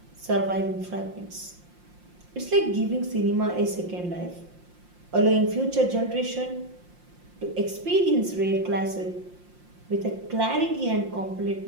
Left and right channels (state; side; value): late; left; 5.7 ms